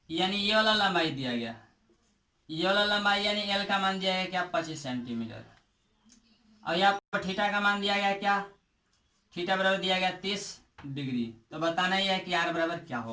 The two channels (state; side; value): identical; both; correlation 1.00